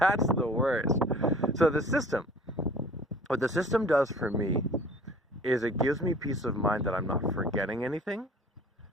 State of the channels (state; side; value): normal; both; correlation 0.48